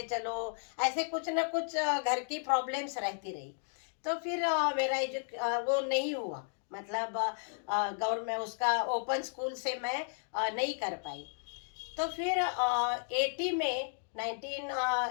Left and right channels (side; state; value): right; silent; digital silence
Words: चलो, ऐसे कुछ ना कुछ घर की प्रॉब्लम्स रहती रही। तो फिर मेरा वो नहीं हुआ, मतलब गवर्नमेंट उसका ओपन स्कूल से मैं नहीं कर पाई। तो फिर 80 में